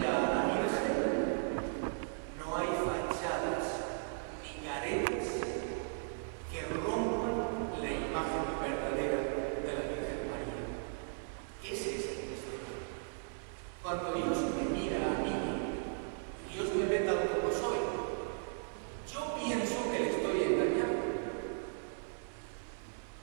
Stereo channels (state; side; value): silent; left; 53 dB below the other